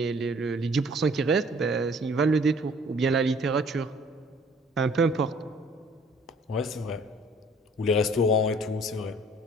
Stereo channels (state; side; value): normal; both; correlation 0.55